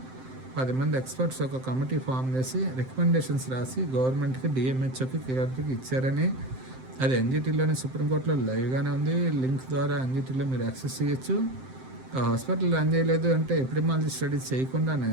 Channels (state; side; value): late; left; 7.7 ms